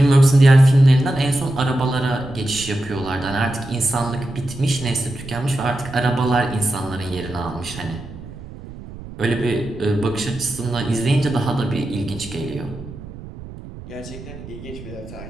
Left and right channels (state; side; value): noise; right; rumble, 14 dB below the sound